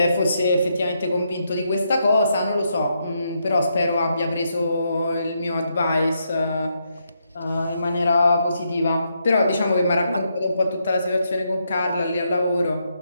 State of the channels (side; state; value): both; inverted; correlation -0.79